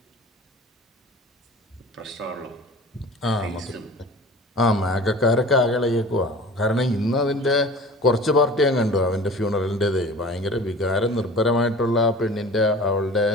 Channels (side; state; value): both; normal; correlation 0.41